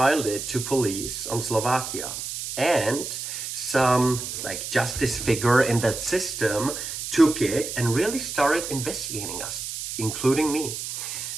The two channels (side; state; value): right; noise; hiss, 6 dB below the sound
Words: it to police on Slovakia. And some like justice figure in that system took it and really started investigating us, including me.